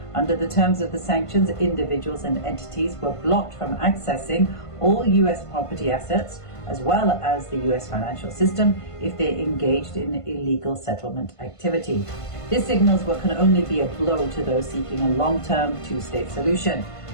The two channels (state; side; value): late; right; 1.5 ms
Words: Under the terms of the sanctions, individuals and entities were blocked from accessing all U.S. property assets, as well as the U.S. financial system, if they engaged in illegal settlement activity. This signals what can only be a blow to those seeking a long-term two-state solution.